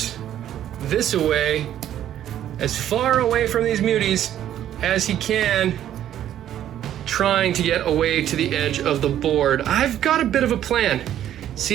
this away, as far away from these muties as he can, trying to get away to the edge of the board. I've got a bit of a plan.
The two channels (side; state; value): left; quieter; 11.3 dB